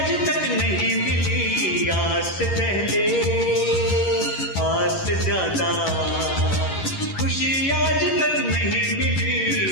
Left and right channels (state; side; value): late; right; 11 ms